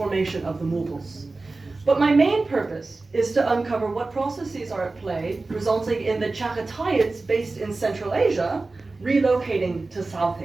of the Mughals. But my main purpose is to uncover what processes are at play, resulting in the Chaghatayids based in Central Asia relocating to South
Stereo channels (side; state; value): left; quieter; 3.5 dB